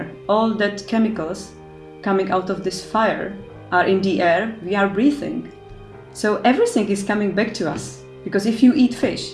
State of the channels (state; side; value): identical; both; correlation 1.00